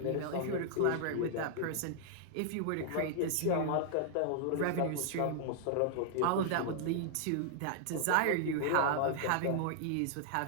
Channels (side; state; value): both; different; correlation -0.01